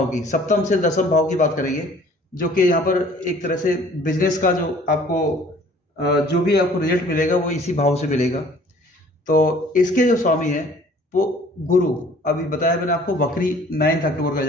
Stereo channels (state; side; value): normal; both; correlation 0.53